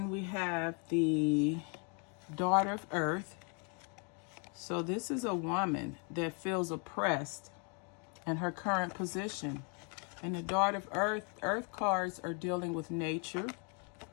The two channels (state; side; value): quieter; right; 36.6 dB